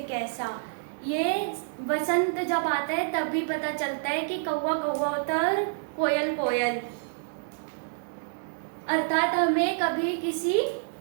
कैसा। ये वसंत जब आता है तब भी पता चलता है कि कौवा कौवा होता है और कोयल कोयल। अर्थात हमें कभी किसी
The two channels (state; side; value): silent; left; digital silence